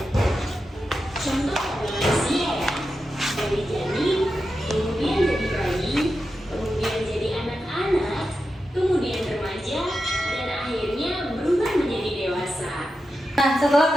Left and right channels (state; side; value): normal; both; correlation 0.90